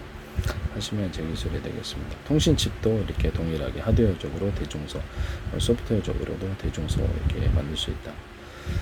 하시면 제 기술이 되겠습니다. 통신칩도 이렇게 동일하게 하드웨어적으로 대중소, 소프트웨어적으로도 대중소 이렇게 만들 수 있다.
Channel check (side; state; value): both; identical; correlation 1.00